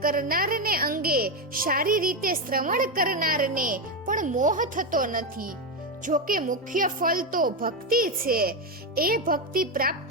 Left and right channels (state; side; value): normal; both; correlation 0.09